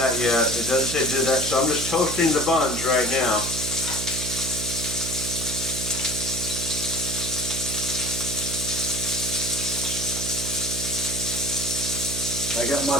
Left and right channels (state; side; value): noise; right; hum, 6 dB below the sound